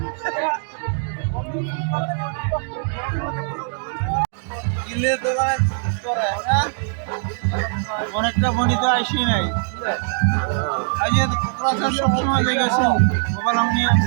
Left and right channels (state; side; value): silent; left; digital silence